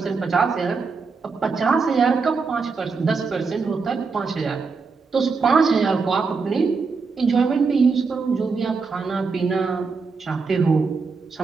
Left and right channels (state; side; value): quieter; left; 4.7 dB